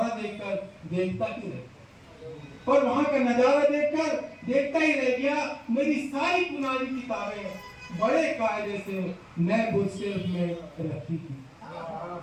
देखता ही रह गया। मेरी सारी पुरानी किताबें बड़े कायदे से नए बुक शेल्फ में रखी थी।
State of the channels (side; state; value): both; identical; correlation 1.00